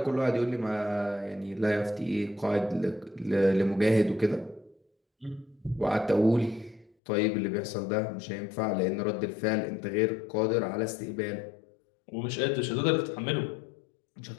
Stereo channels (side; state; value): right; drops out; at 6.9 s